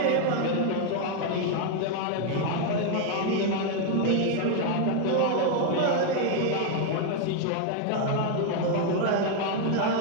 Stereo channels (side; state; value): both; different; correlation 0.00